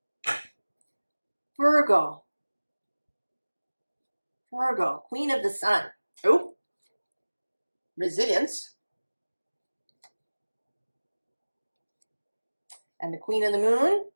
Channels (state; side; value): inverted; both; correlation -1.00